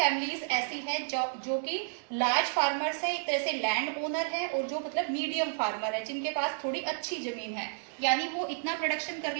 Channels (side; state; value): left; silent; digital silence